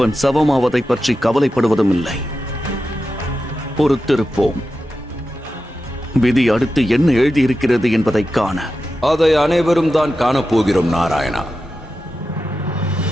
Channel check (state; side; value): normal; both; correlation 0.91